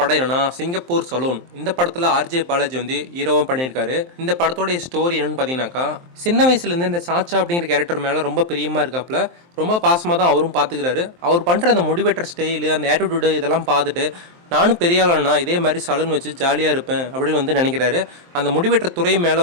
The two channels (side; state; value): left; late; 23 ms